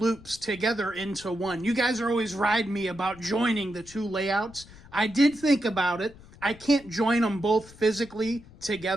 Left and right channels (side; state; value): left; noise; rumble, 21 dB below the sound